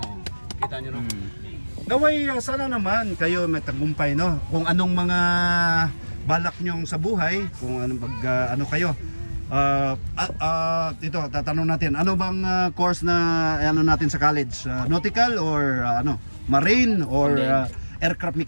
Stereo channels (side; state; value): both; inverted; correlation -1.00